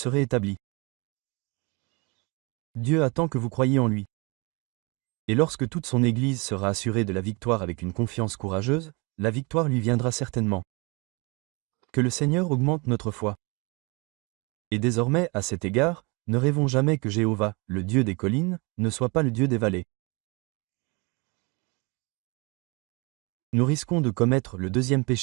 établis. Dieu attend que vous croyiez en lui. Et lorsque toute son Église sera assurée de la victoire avec une confiance courageuse, la victoire lui viendra certainement. Que le Seigneur augmente notre foi. Et désormais, à cet égard, ne rêvons jamais que Jéhovah, le Dieu des collines, ne soit pas le Dieu des vallées. Nous risquons de commettre le deuxième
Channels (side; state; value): left; quieter; 28.8 dB